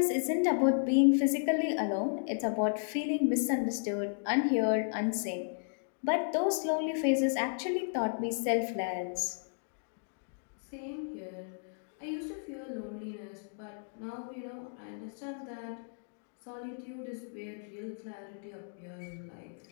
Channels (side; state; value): right; silent; digital silence